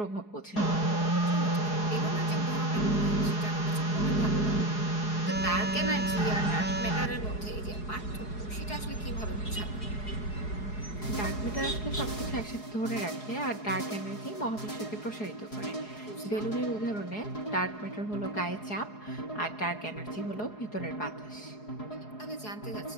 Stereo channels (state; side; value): late; right; 4.8 ms